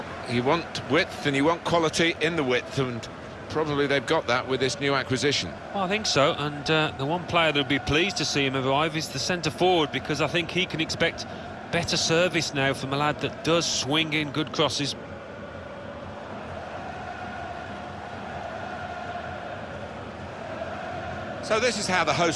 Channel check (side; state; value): both; identical; correlation 1.00